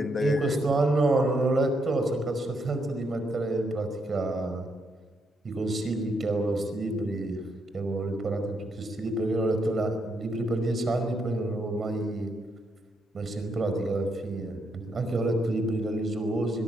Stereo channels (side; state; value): both; normal; correlation 0.77